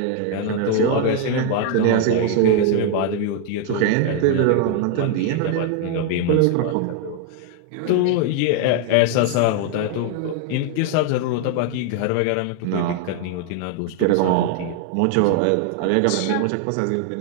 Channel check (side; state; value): both; different; correlation 0.01